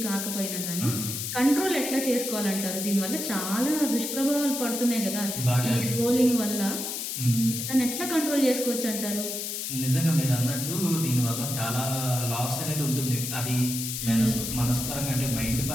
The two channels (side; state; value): left; noise; hiss, 4 dB below the sound